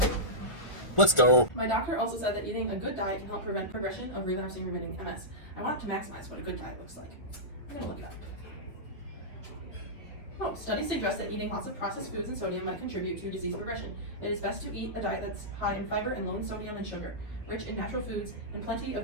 Let's go. My doctor also said that eating a good diet can help prevent progression of relapsing-remitting MS. I want to maximize what a good diet looks like. I'm going to look it up. Oh, studies suggest that eating lots of processed foods and sodium might contribute to disease progression. It is best to eat a diet that's high in fiber and low in sodium and sugar, rich in natural foods, and plenty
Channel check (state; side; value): late; right; 1.4 ms